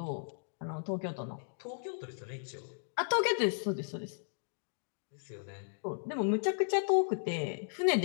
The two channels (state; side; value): silent; right; digital silence